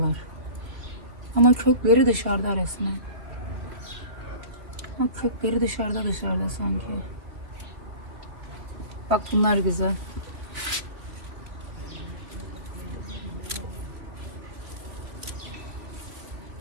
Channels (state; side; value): late; left; 2.7 ms